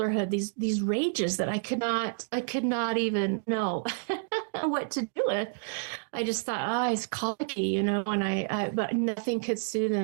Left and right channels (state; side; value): silent; left; digital silence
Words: these rages that I could not even know what to do with. I just thought, he's colicky, and but nothing could soothe